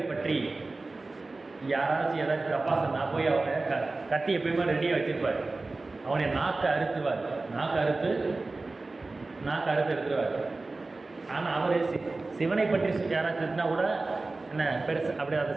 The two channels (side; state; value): left; quieter; 3.4 dB